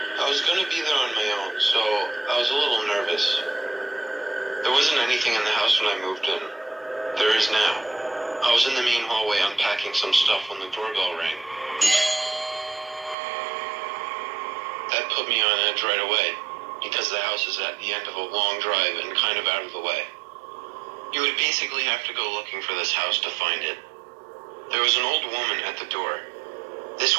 I was going to be there on my own, so I was a little nervous. There wasn't anything in the house when I moved in. There is now. I was in the main hallway unpacking some stuff when the doorbell rang. That put me on edge right away, because the house is at the end of a long drive and kind of out of the way. You would basically have to go looking for this house to find it. There was an old woman at the door.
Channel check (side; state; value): left; drops out; at 13.2 s